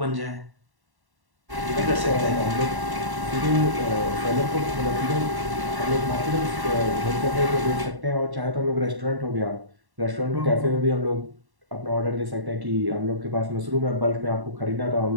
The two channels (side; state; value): left; late; 1.1 ms